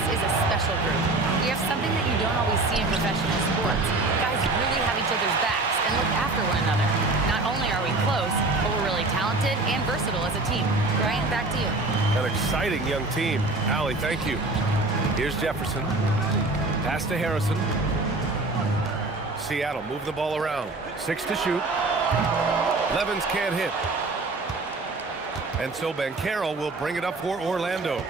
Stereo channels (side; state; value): left; quieter; 3.1 dB